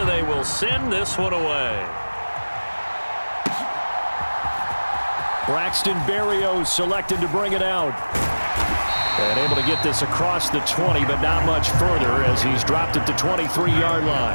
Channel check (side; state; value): both; inverted; correlation -1.00